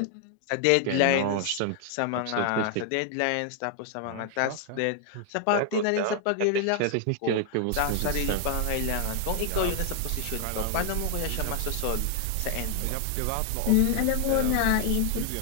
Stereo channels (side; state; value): both; different; correlation 0.00